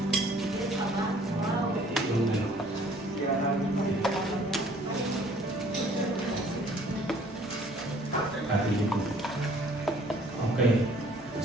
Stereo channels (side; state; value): both; normal; correlation 0.56